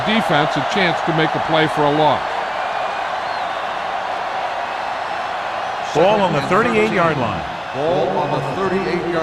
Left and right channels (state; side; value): identical; both; correlation 1.00